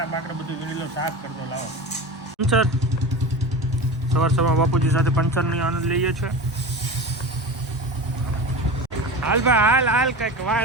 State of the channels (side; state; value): both; normal; correlation 0.29